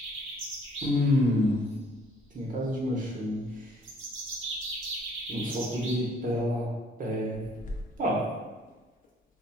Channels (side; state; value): both; normal; correlation 0.60